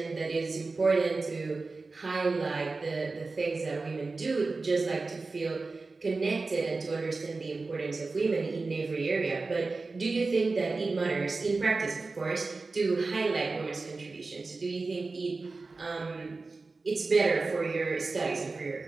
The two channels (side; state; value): left; quieter; 3.8 dB